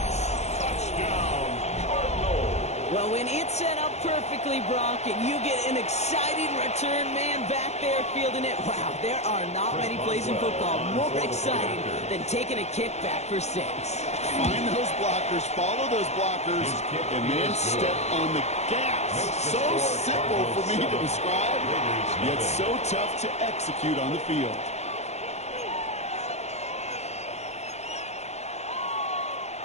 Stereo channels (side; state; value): right; late; 0.32 ms